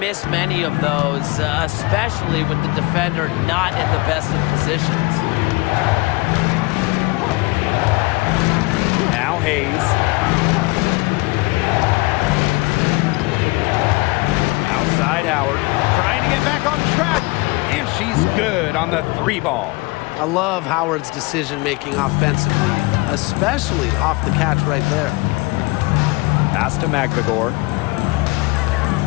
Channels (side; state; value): right; quieter; 24.2 dB